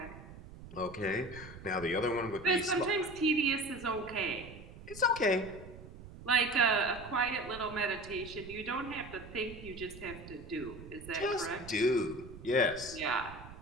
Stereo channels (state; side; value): noise; right; rumble, 15 dB below the sound